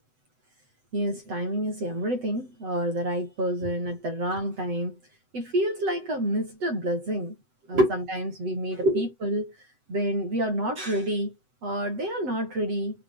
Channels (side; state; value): left; late; 7.9 ms